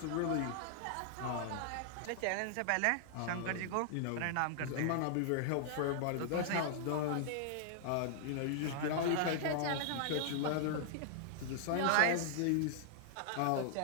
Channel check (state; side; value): different; both; correlation -0.01